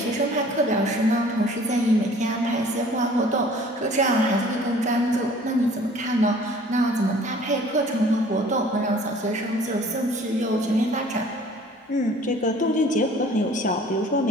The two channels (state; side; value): normal; both; correlation 0.51